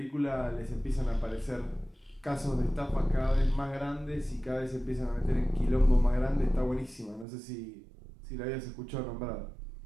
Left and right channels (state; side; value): drops out; left; at 7.2 s